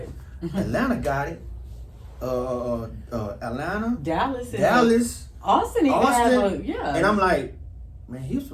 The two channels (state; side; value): identical; both; correlation 1.00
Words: Atlanta got it. Atlanta, Dallas, Austin even have yeah. And I'm like, man,